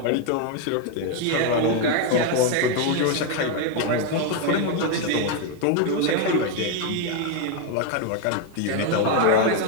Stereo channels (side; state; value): both; different; correlation 0.01